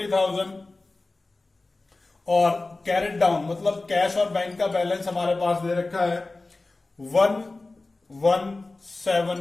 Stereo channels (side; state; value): right; quieter; 3.3 dB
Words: और कैरेट डाउन मतलब कैश और बैंक का बैलेंस हमारे पास दे रखा है